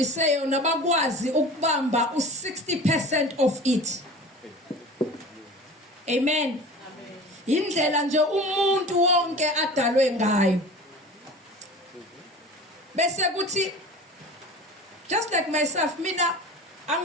yona bakwazi ukubamba u60% of it. Amen. Indlela nje umuntu wonke adalwe ngayo. Bese kuthi just like myself mina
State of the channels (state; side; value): normal; both; correlation 0.37